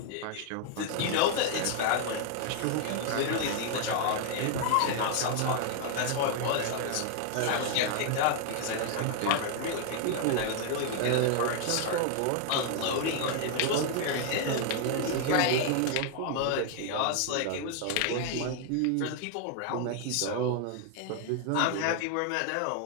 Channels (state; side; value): different; both; correlation 0.00